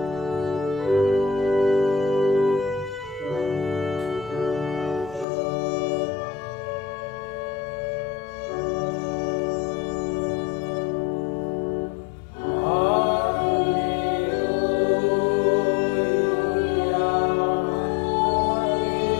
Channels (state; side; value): drops out; right; at 5.2 s